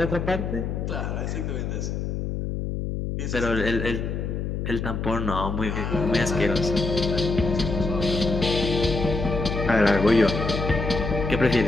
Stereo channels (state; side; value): noise; left; hum, 3 dB below the sound